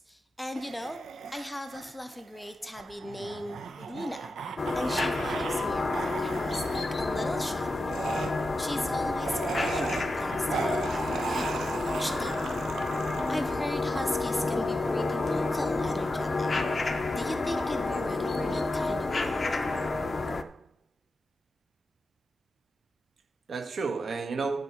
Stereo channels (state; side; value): normal; both; correlation 0.89